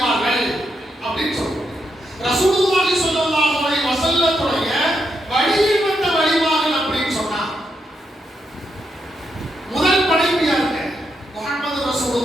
அப்படின்னு சொல்றோம். ரசூலுல்லாஹி ஸல்லல்லாஹு அலைஹி வஸல்லத்துடைய வழியில் வந்த வழிமார்கள் அப்படின்னு சொன்னா முதல் படைப்பு யாருங்க? முஹம்மது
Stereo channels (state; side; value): normal; both; correlation 0.82